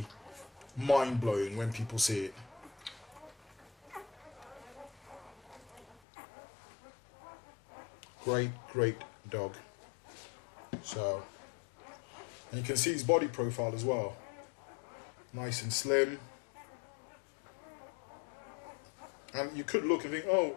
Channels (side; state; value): right; drops out; at 6.0 s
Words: mind-blowing when people see it. Great dog. So, and you can see his body profile as well. Nice and slim. And you could look and think, oh,